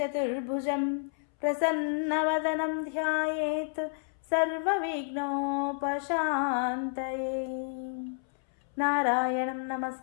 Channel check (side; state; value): right; silent; 58 dB below the other